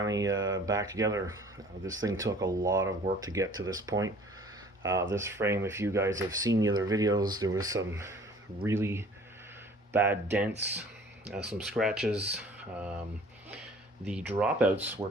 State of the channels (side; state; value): both; normal; correlation 0.51